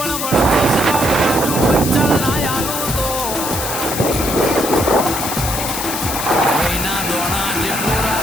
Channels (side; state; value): left; noise; hiss, 4 dB below the sound